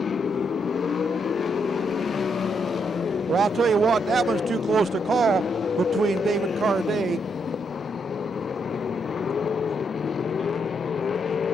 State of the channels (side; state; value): both; normal; correlation 0.77